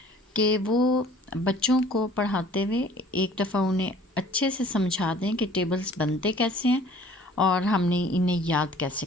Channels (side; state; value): both; normal; correlation 0.52